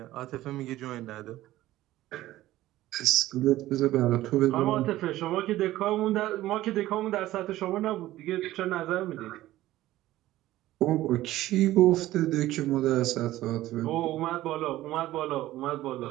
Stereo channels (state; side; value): quieter; left; 15.4 dB